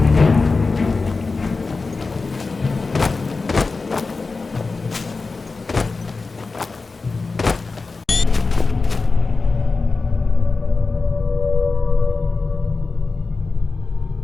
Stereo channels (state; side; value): quieter; right; 4.0 dB